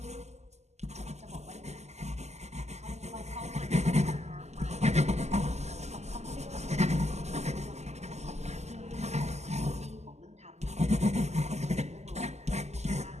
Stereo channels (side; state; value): left; late; 0.33 ms